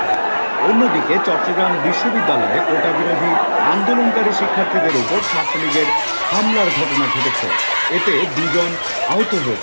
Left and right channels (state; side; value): inverted; both; correlation -1.00